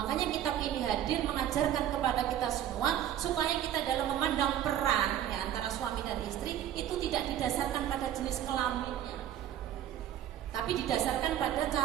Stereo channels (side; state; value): left; quieter; 11.1 dB